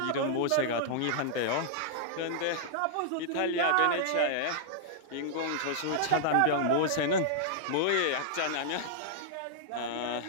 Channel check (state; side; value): different; both; correlation -0.01